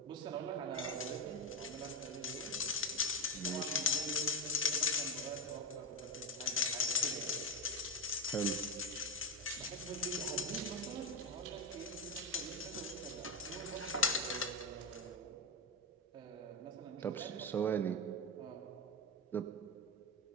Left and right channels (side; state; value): both; normal; correlation 0.08